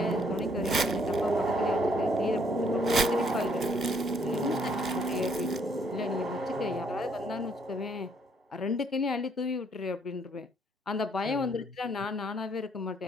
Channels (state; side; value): normal; both; correlation 0.67